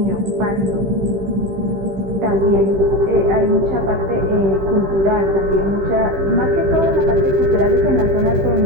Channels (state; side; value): late; left; 15 ms